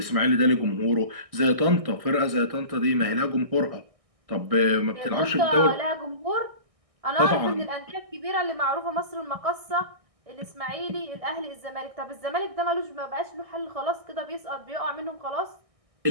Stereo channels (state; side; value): late; left; 1.6 ms